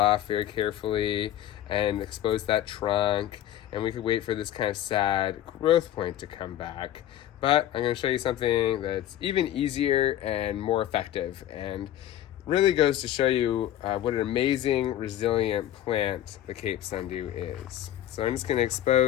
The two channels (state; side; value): quieter; right; 12.3 dB